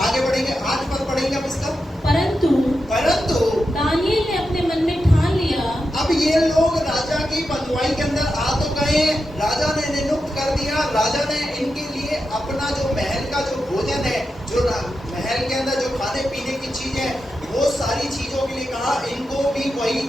बढ़ेंगे, 8 पद पढ़ेंगे अब इसका। परंतु दानिएल ने अपने मन में ठान लिया। अब ये लोग राजा की बंधुआई के अंदर आ तो गए, राजा ने इन्हें नियुक्त कर दिया, राजा ने इनके लिए अपना जो महल का जो भोजन है, जो महल के अंदर जो खाने पीने की चीज है, वो सारी चीजों के लिए कहा इनको भी वही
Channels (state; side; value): normal; both; correlation 0.89